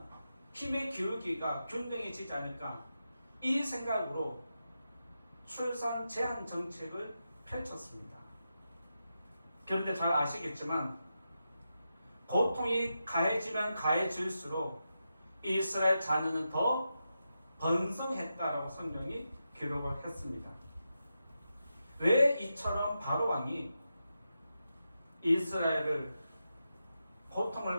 힘의 기울기가 균등해지지 않을까, 이 생각으로 출산 제한 정책을 펼쳤습니다. 그런데 잘 아시겠지만 고통이 가해지면 가해질수록 이스라엘 자녀는 더 번성했다라고 성경이 기록을 했습니다. 왜 이처럼 바로 왕이 이스라엘을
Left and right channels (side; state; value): both; inverted; correlation -0.88